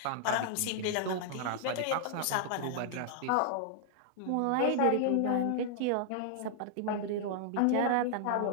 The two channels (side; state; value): both; different; correlation -0.01